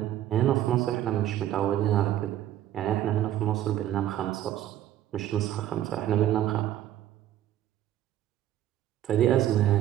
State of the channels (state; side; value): quieter; left; 12.4 dB